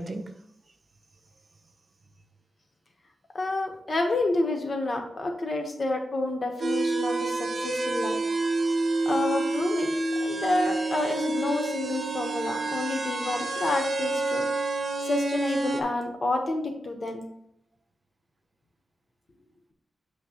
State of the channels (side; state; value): both; normal; correlation 0.87